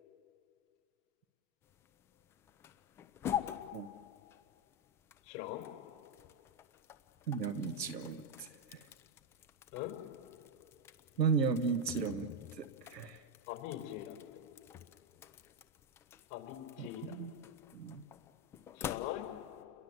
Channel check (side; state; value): both; normal; correlation 0.05